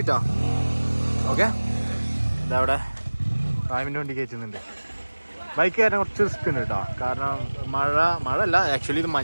ഓക്കെ, ഇതവിടെ ഫാമിൻ്റെ വണ്ടി കയറ്റുന്നുണ്ട്. ബൈക്ക് കയറാൻ കുറച്ച് റിസ്ക് ഉണ്ട് കേട്ടോ. കാരണം മഴ അല്ല, ആക്ച്വലി ഇത്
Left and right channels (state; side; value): inverted; both; correlation -1.00